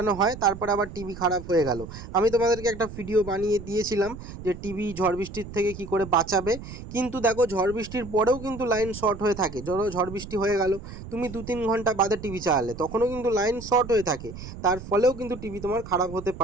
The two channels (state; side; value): noise; right; rumble, 12 dB below the sound